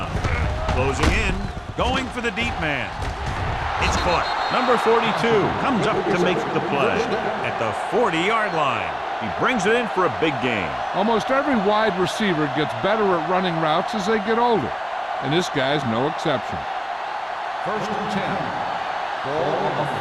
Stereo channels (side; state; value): both; identical; correlation 1.00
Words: Closing in. Going for the deep man. It's caught. Number 42 comes up to make the play at the 40-yard line. He brings it in for a big gain. Almost every wide receiver gets better at running routes as they get older, and this guy's no exception. First and 10. Ball on the